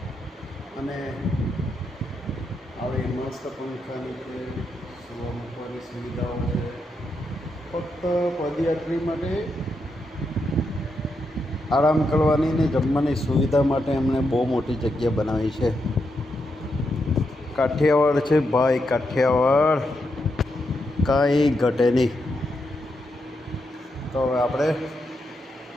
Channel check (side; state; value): both; normal; correlation 0.83